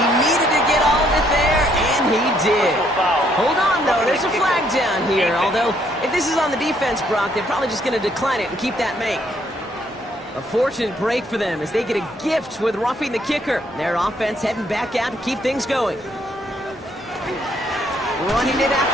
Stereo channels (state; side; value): normal; both; correlation 0.69